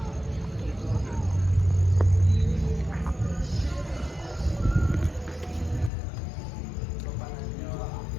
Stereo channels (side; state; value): right; drops out; at 5.9 s